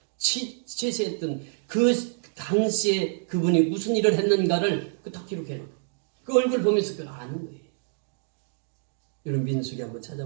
취세했던 그 당시에 그분이 무슨 일을 했는가를 딱 기록해놓고 그 얼굴 보면서 그걸 아는 거예요. 여러분 민수기 한번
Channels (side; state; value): left; silent; digital silence